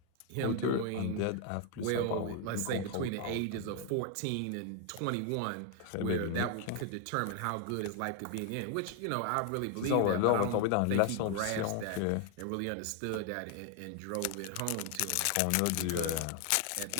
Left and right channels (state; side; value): different; both; correlation 0.00